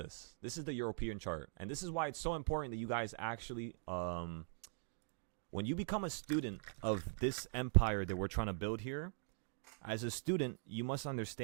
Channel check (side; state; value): left; silent; digital silence